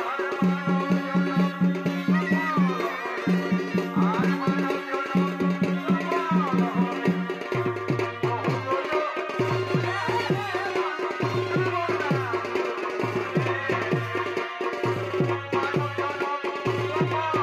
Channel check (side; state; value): both; identical; correlation 1.00